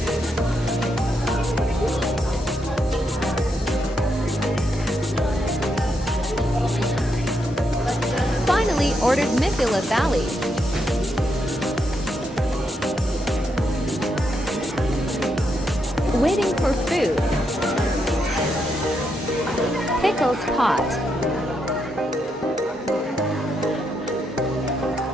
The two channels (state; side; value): normal; both; correlation 0.80